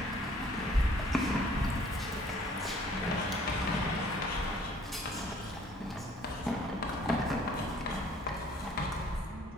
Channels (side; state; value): both; normal; correlation 0.57